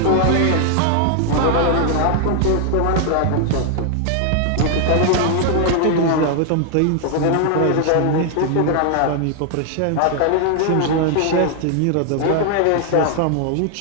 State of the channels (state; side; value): different; both; correlation 0.00